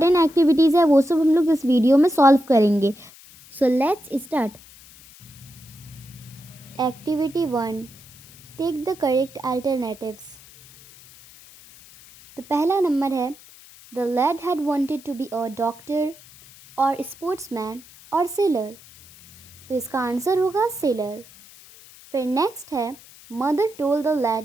एक्टिविटीज़ है वो सब हम लोग इस वीडियो में सॉल्व करेंगे। So let's start. Activity 1, take the correct alternatives. तो पहला नंबर है the lad had wanted to be a doctor और स्पोर्ट्समैन और सेलर। तो इसका आंसर होगा सेलर। फिर नेक्स्ट है mother told the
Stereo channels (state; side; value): noise; left; hiss, 22 dB below the sound